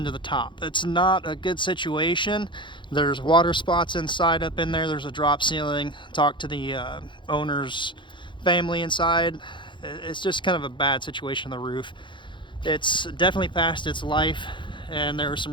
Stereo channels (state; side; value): late; right; 0.23 ms